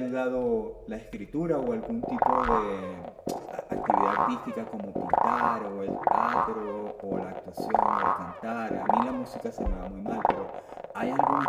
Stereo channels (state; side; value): identical; both; correlation 1.00